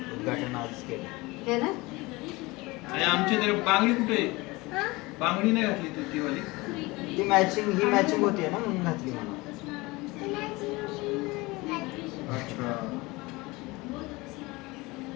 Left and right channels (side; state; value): right; quieter; 22.7 dB